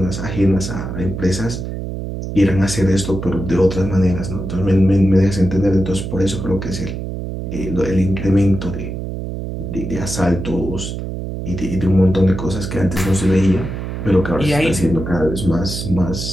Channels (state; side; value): noise; right; hum, 6 dB below the sound